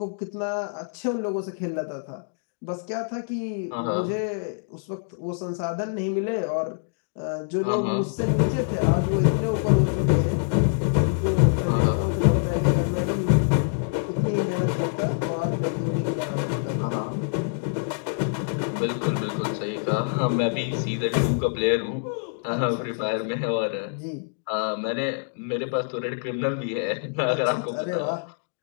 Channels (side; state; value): right; silent; digital silence